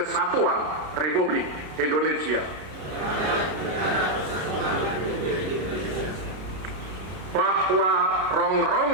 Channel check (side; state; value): left; late; 33 ms